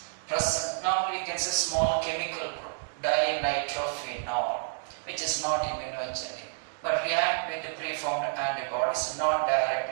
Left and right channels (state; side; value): silent; left; digital silence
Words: present, normally we can say small chemical group, dinitrophenol, which is not immunogenic, but react with the preformed antibodies, not